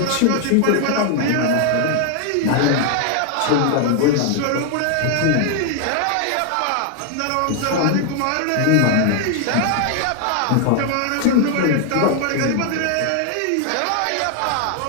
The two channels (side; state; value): both; different; correlation 0.00